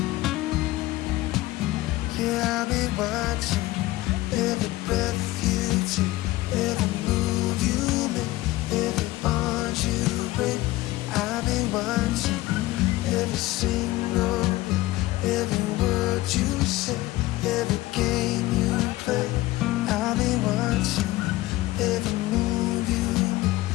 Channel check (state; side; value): quieter; right; 18.0 dB